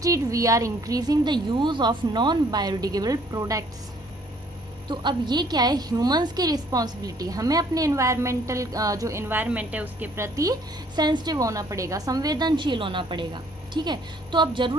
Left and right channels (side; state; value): both; normal; correlation 0.61